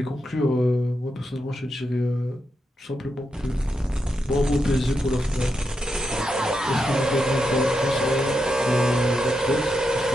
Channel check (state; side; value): normal; both; correlation 0.85